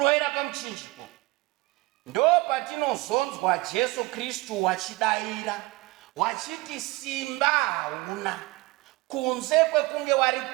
pamuchinjiko? Ndo patinozonzwa Jesu Kristu wachidaira wachiti simba hauna, kunze kwekunge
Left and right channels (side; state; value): left; quieter; 21.6 dB